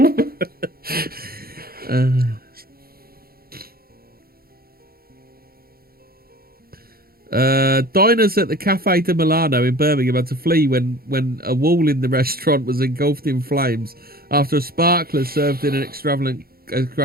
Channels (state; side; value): late; left; 0.44 ms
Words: Diners at the Cafe de Milano in Birmingham had to flee when a wall in the restaurant was engulfed in flames after a sparkler served in an extravagant